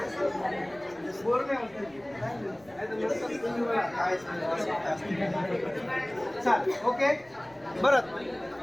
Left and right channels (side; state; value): right; noise; rumble, 26 dB below the sound